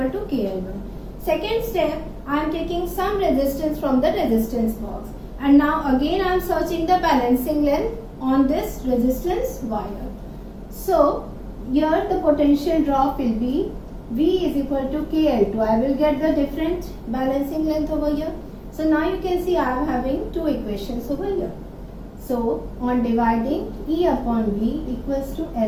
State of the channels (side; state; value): both; identical; correlation 1.00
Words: to KL1. Second step, I am taking some resistance from the resistance box. And now again I am searching the balancing length on this resistance wire. So here the potential drop will be V is equal to KL2. I will get the different balancing length over here. So now you can see I am having two equations over here. So on dividing, E upon V equals to